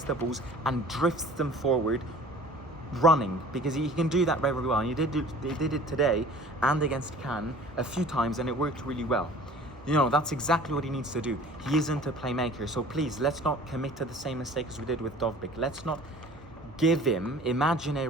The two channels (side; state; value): both; normal; correlation 0.46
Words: the balls, and drifts them forward, running, because he can do that very well. And he did it today and against Cannes a few times, and it worked really well. That's exactly what he needs to do. He isn't a playmaker, so please, let's not commit to the same mistake as we did with Dovbyk. Let's not give him